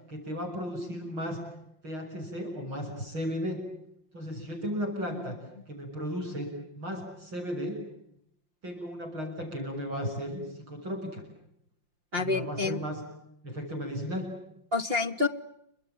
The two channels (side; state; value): left; late; 5.7 ms